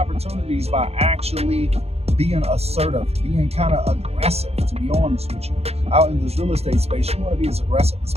by actually being assertive, being kind of aggressive, to be honest with you. Out in this real estate space, you want to be as aggressive as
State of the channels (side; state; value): left; late; 0.30 ms